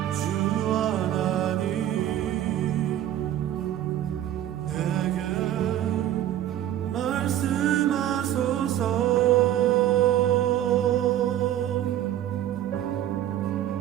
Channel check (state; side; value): quieter; left; 12.0 dB